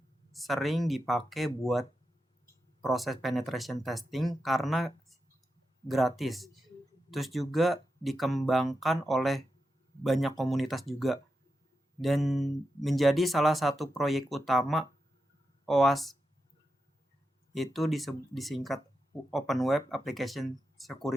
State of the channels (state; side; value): normal; both; correlation 0.88